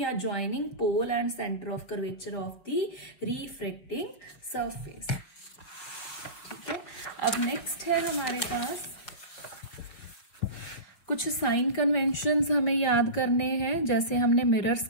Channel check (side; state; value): right; late; 5.6 ms